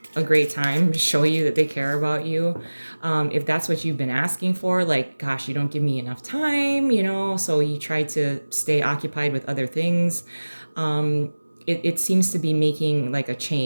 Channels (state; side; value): inverted; both; correlation -1.00